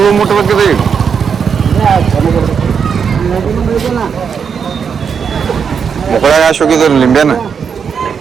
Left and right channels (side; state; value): left; quieter; 6.6 dB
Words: ಮುಟ್ಬೇಕಿದೆ ಈಗ. ಮುಕ್ಕಳ ಯಾಶ್ ಹೋಗಿದ್ರು ಲಿಂಬೆನ.